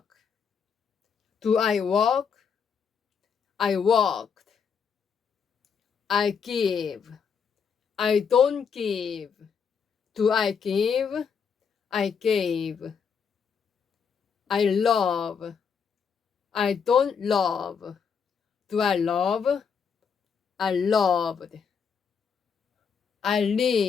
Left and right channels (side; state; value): right; quieter; 6.5 dB